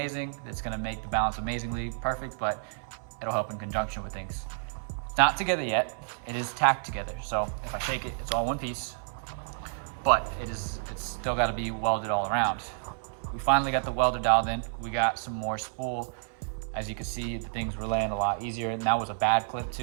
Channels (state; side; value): silent; left; 58 dB below the other